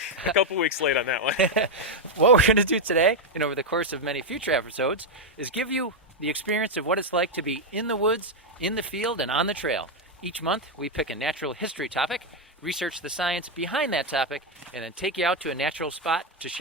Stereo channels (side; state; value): both; normal; correlation 0.02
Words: a couple weeks late on that one. What we're going to do today, and over the course of many future episodes, is give you the experience of what it's like to be in the woods, in the field, and on the trail. Each month, we pick a natural history topic, research the science behind that topic, and then take you out to a natural spot to